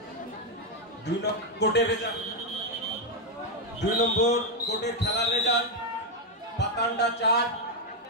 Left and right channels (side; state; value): both; normal; correlation 0.02